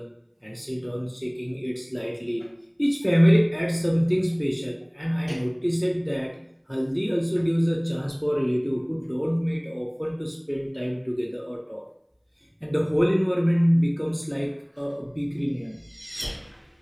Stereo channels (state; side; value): identical; both; correlation 1.00